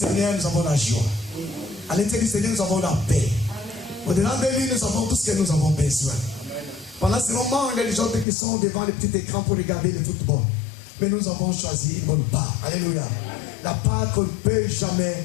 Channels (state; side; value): drops out; right; at 8.2 s